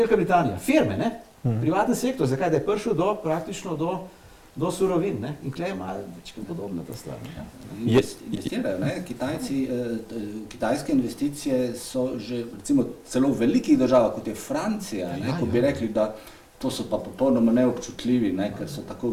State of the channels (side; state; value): both; identical; correlation 1.00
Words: Britanija, firme, privatni sektor, zakaj? Da je prišel praktično do surovin, in tukaj je malo večkrat podobna ta stvar. Investirajo, kitajske investicije so že recimo celo v velikih državah, kot je Francija, ko bi rekli, da to so pa popolnoma neobčutljivi, ker so tako